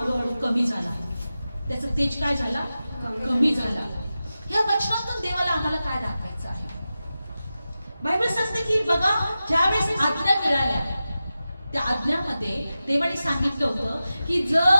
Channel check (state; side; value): inverted; both; correlation -0.93